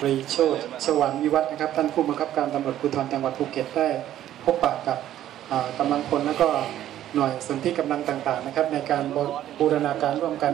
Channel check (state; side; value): quieter; left; 12.2 dB